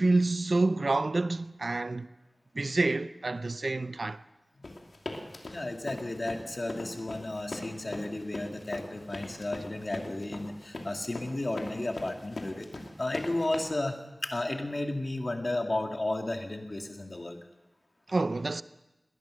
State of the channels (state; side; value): normal; both; correlation 0.97